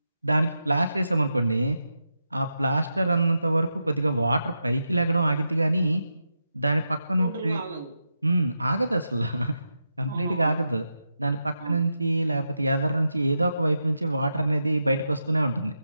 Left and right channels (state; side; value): inverted; both; correlation -0.88